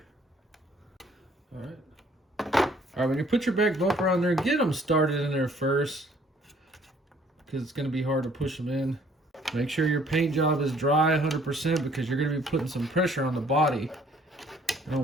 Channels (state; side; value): normal; both; correlation 0.60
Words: All right, when you put your back bumper on there, get them started in there first because it's going to be hard to push them in. Make sure your paint job is dry 100% because you're going to be putting some pressure on the body. I don't